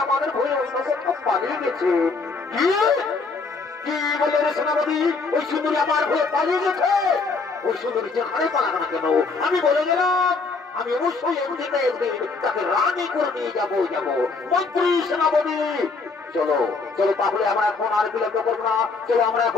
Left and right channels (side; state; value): right; quieter; 4.2 dB